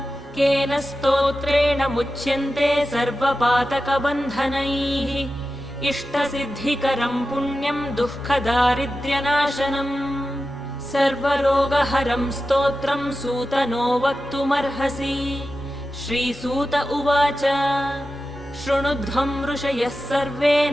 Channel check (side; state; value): both; normal; correlation 0.92